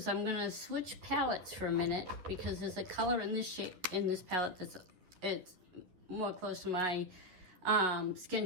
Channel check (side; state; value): left; late; 11 ms